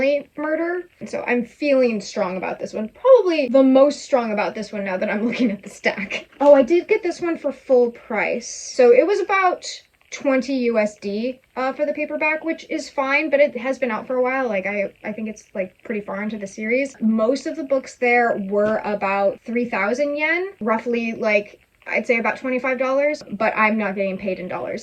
murder. And so I'm feeling strong about this one. Probably the most strong about this one now that I'm looking at the stack. Oh, I did get this one for full price. So it was about 20 USD for the paperback, which is fine, but it has been out for a while. Like I think it's like pretty far into the series. Most of the books there were about 3,000 yen, roughly like I'd say about $25, but I'm not getting paid in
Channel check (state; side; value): identical; both; correlation 1.00